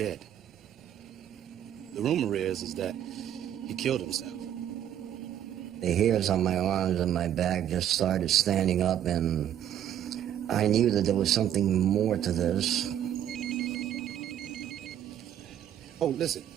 The rumor is that he killed himself. The hairs on my arms and my back just started standing up, and I knew that there was something more to this. Oh, listen,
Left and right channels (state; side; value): quieter; left; 10.5 dB